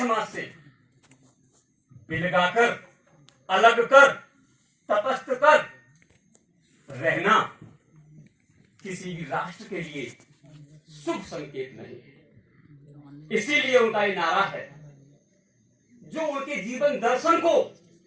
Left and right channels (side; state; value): both; identical; correlation 1.00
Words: से बिलगाकर, अलग कर, तटस्थ कर रहना किसी भी राष्ट्र के लिए शुभ संकेत नहीं है। इसीलिए उनका ये नारा है, जो उनके जीवन दर्शन को